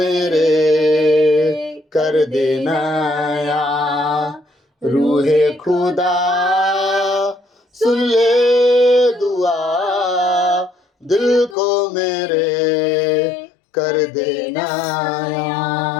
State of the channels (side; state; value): right; drops out; at 11.6 s